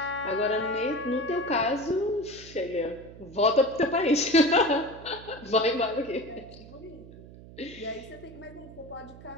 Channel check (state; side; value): noise; right; hum, 18 dB below the sound